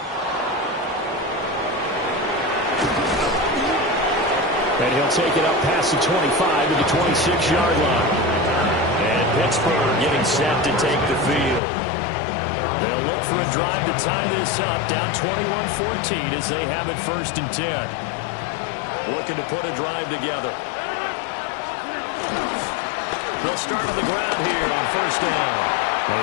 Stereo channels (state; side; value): drops out; right; at 11.6 s